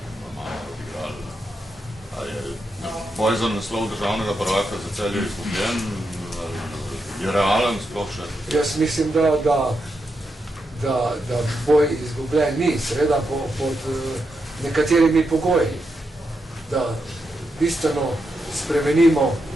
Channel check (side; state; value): both; normal; correlation 0.84